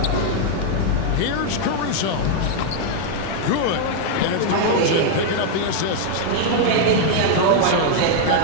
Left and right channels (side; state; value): both; different; correlation 0.00